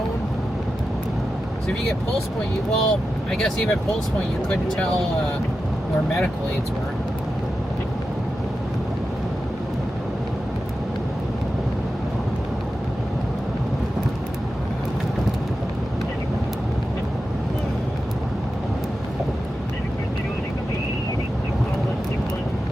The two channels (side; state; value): both; normal; correlation 0.91